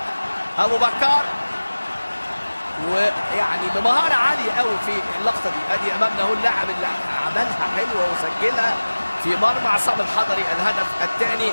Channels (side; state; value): both; inverted; correlation -1.00